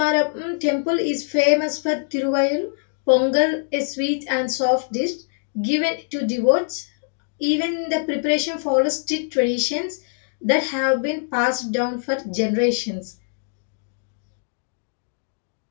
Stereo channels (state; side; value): silent; right; digital silence